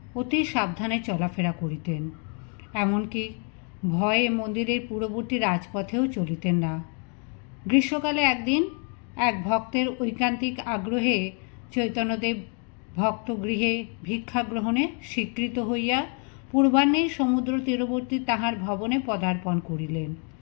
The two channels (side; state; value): right; quieter; 39.8 dB